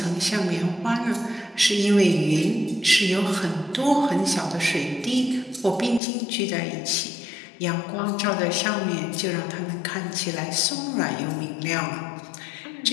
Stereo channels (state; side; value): drops out; right; at 6.0 s